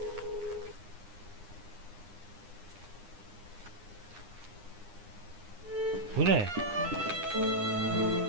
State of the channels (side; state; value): left; late; 9.8 ms